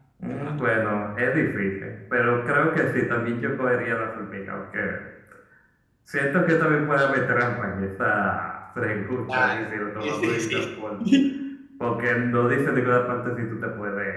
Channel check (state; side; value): identical; both; correlation 1.00